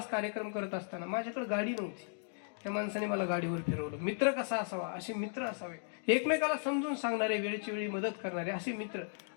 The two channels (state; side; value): silent; right; digital silence